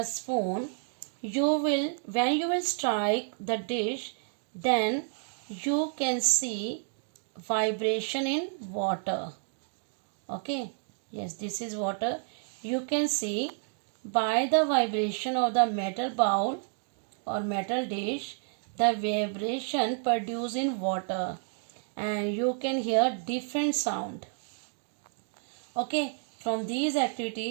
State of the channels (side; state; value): left; silent; digital silence